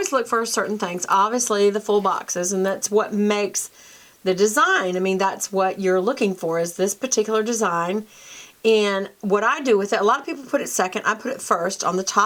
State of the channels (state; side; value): identical; both; correlation 1.00